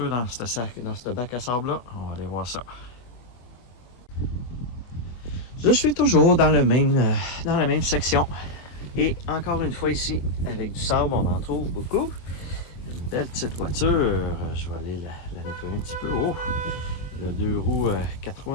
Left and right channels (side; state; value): right; late; 24 ms